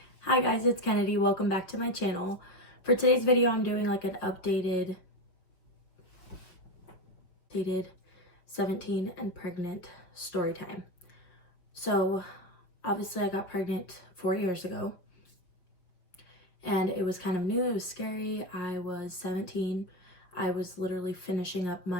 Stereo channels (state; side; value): late; right; 5.7 ms